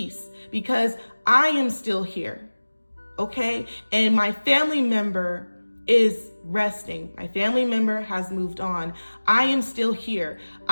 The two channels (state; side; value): inverted; both; correlation -1.00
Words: because I am still here. Okay? And my family member is resting. My family member has moved on. I am still here.